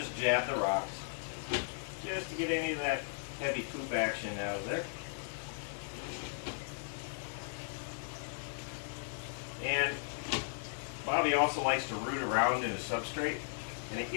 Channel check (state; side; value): silent; right; digital silence